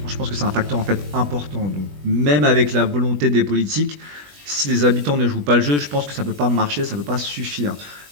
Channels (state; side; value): late; left; 20 ms